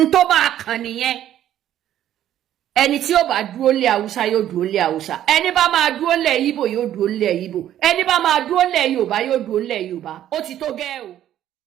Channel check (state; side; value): quieter; left; 11.7 dB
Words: tó bá kàn nìyẹn. Ẹni tí ó bá dúró lé Haúsá yóò dúró lé Haúsá. Ẹni bá máa dúró lé Ìgbò yóò dúró lé Ìgbò. Ẹni bá máa dúró lé Yorùbá yóò dúró lé Yorùbá. Ó ti tó gẹ́ o.